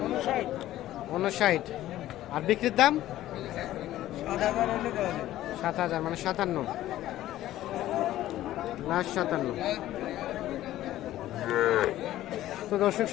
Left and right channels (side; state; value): right; quieter; 14.2 dB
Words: 59। আর বিক্রির দাম 7,000 মানে 57। লাস্ট 57। তো দর্শক